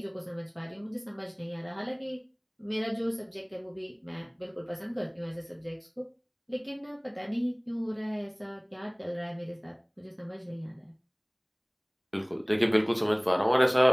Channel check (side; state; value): both; identical; correlation 1.00